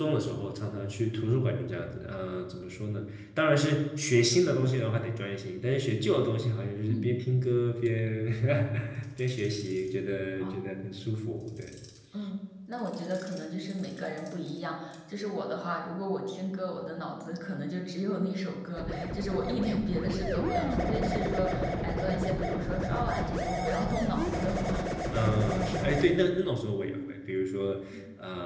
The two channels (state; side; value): identical; both; correlation 1.00